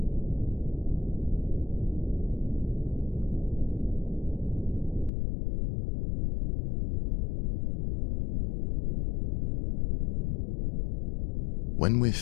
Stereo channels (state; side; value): drops out; right; at 5.1 s